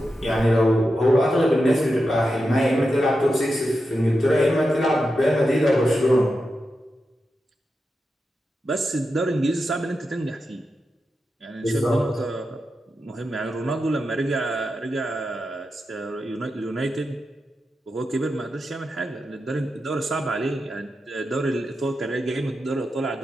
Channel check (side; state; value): both; normal; correlation 0.89